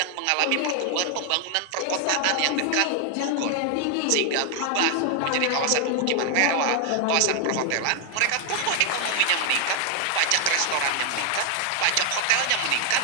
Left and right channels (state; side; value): different; both; correlation 0.00